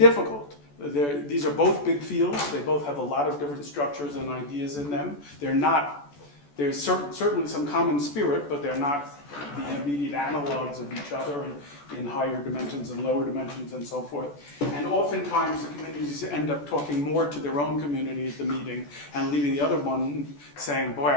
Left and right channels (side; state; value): right; late; 14 ms